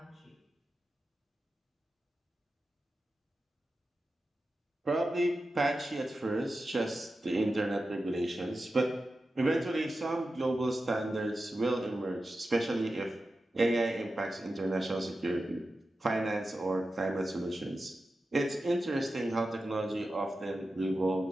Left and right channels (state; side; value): normal; both; correlation 0.92